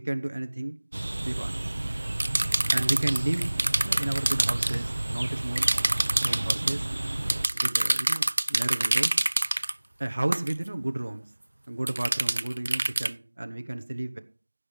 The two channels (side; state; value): both; inverted; correlation -1.00